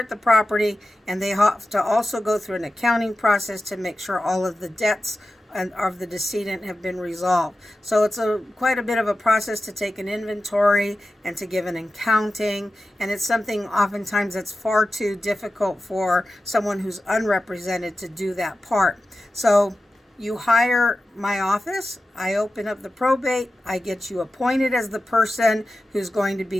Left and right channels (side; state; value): both; normal; correlation 0.93